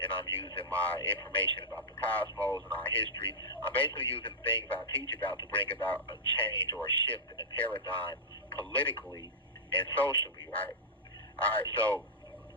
and I'm using my information about the cosmos and our history. I'm basically using things I teach about to bring about a change or a shift in the paradigm politically and socially, right? All right, so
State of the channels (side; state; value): both; normal; correlation -0.09